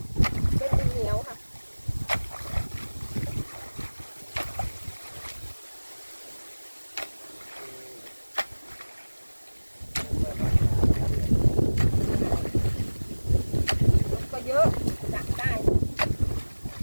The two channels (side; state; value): both; inverted; correlation -1.00